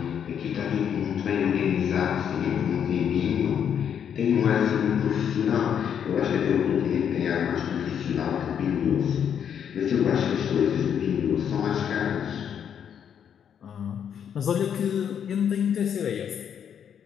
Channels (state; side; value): quieter; right; 8.4 dB